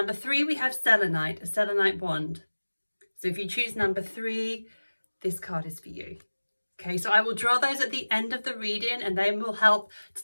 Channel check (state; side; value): inverted; both; correlation -1.00